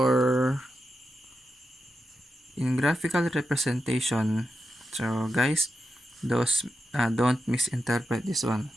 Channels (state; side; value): normal; both; correlation 0.89